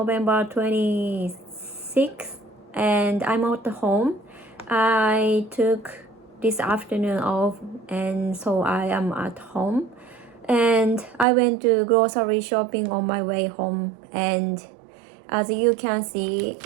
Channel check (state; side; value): drops out; left; at 11.2 s